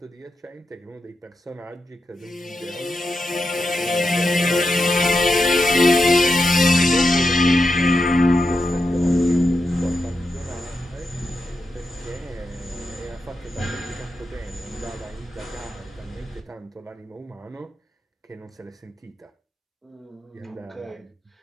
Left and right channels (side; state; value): both; normal; correlation 0.87